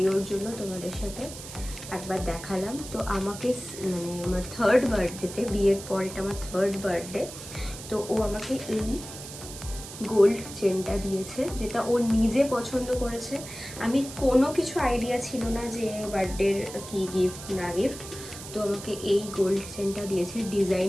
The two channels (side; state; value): right; noise; hiss, 12 dB below the sound